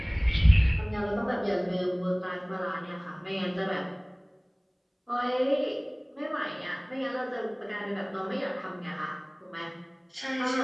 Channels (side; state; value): both; identical; correlation 1.00